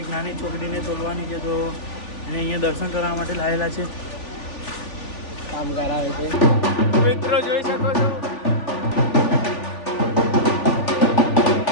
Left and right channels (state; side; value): late; right; 3.4 ms